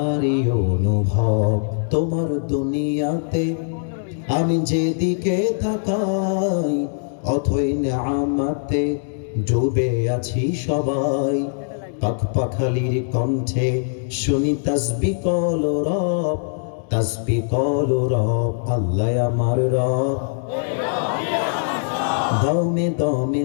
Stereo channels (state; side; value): silent; right; digital silence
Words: অনুভব, তোমার দুনিয়াতে আমি যেদিকে তাকাই অথই নেয়ামতে ডুবে আছি সবাই। পাখপাখালির কণ্ঠে শুনি তাসবিহ কলো রব, তাসবিহ কলো রব, আল্লাহ আমার রব। দমে দমে